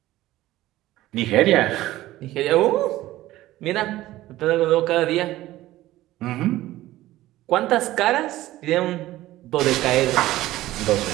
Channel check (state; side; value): quieter; left; 15.9 dB